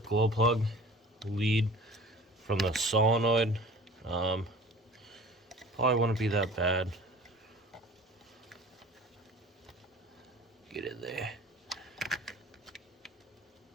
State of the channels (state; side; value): normal; both; correlation 0.43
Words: plug lead from the solenoid, probably wouldn't be that bad. Get it there.